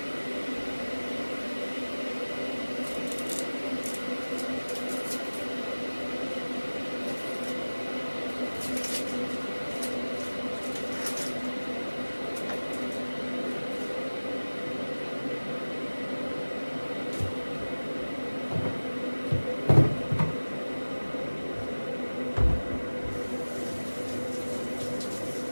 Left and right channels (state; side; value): inverted; both; correlation -1.00